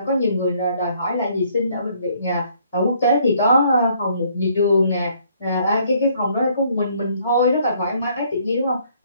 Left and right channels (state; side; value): inverted; both; correlation -0.65